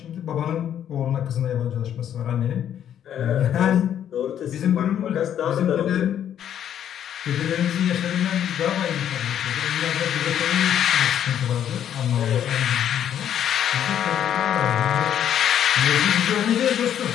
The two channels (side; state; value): right; quieter; 9.9 dB